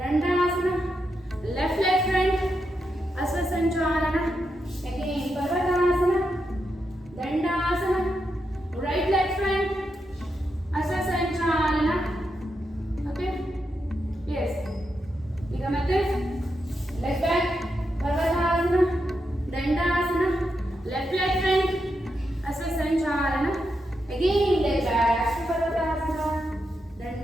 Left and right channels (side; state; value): both; normal; correlation 0.85